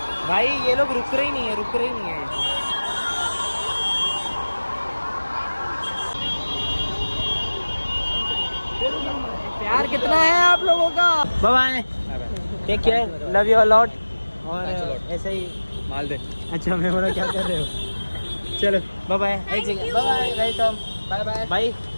भाई ये लोग रुक रहे ही नहीं है प्यार कितना है आप लोगों का। Bye take care, love you a lot. और ऐसे ही माल दे। अच्छा मैं बोला क्या कर रहे हो। चलो bye bye, bye welcome, bye bye भाई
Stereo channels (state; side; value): inverted; both; correlation -1.00